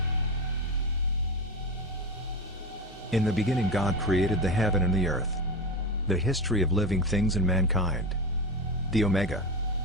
In the beginning God created the heaven and the earth. The history of living things and mankind. The Omega.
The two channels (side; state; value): both; normal; correlation 0.21